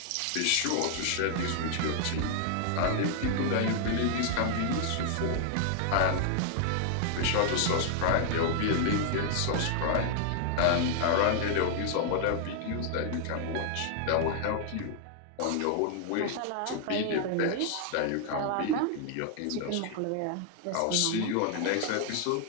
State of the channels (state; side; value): different; both; correlation 0.00